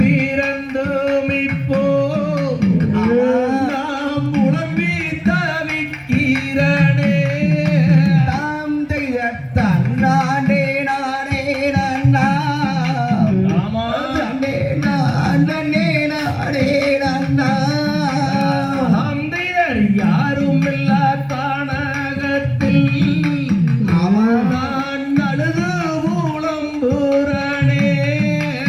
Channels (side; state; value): both; identical; correlation 1.00